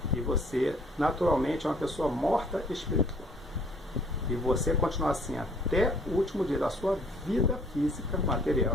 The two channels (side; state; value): both; normal; correlation 0.58